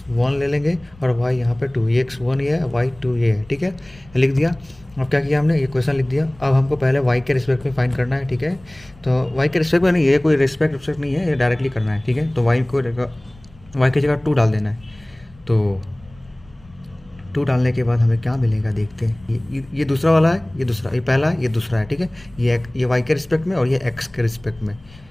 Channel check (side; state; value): left; noise; rumble, 25 dB below the sound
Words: ले लेंगे और y यहाँ पे 2, ये x1 ये है, y2 ये है, ठीक है। लिख दिया। अब क्या किया हमने, ये क्वेश्चन लिख दिया। अब हमको पहले y के रिस्पेक्ट में फाइंड करना है, ठीक है। तो y के रिस्पेक्ट में नहीं, ये कोई रिस्पेक्ट नहीं है, ये डायरेक्टली करना है, ठीक है। तो y की जगह 2 डाल देना है। तो 2 डालने के बाद हमें क्या मिलेगा देखते हैं। ये दूसरा वाला है, ये दूसरा, ये पहला है, ये दूसरा है, ठीक है। ये y के रिस्पेक्ट में और ये x के रिस्पेक्ट में,